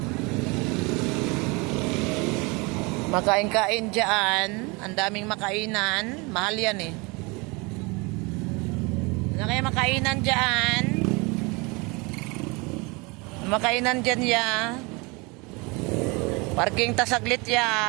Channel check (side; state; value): left; quieter; 27.5 dB